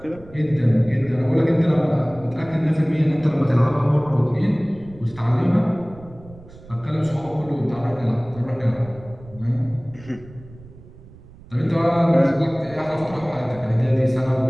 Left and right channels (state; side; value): noise; right; rumble, 20 dB below the sound